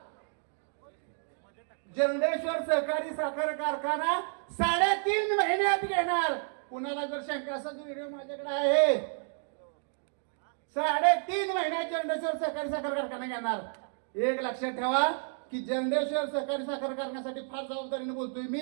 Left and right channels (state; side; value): silent; left; 57 dB below the other